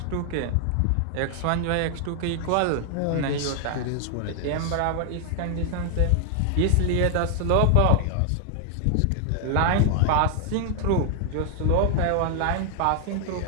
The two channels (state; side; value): different; both; correlation 0.00